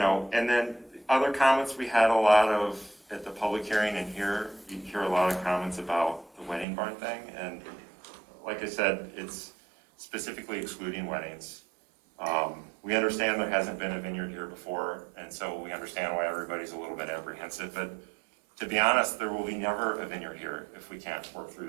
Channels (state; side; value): drops out; left; at 6.7 s